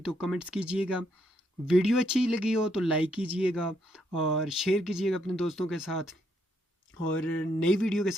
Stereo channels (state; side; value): normal; both; correlation 0.75